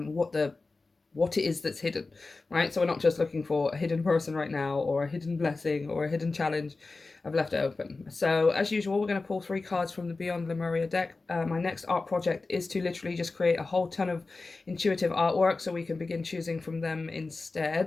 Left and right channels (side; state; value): right; quieter; 3.6 dB